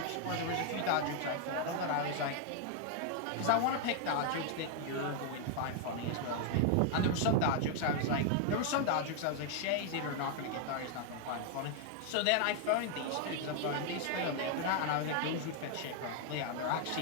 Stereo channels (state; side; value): different; both; correlation 0.00